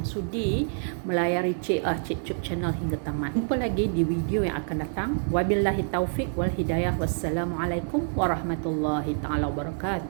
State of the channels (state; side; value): silent; left; digital silence